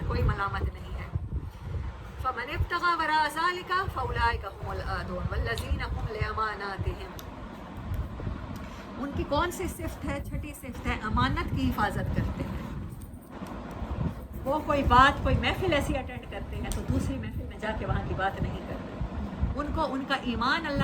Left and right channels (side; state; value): both; identical; correlation 1.00